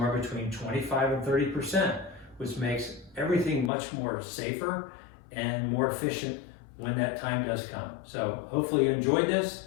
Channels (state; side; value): drops out; right; at 3.7 s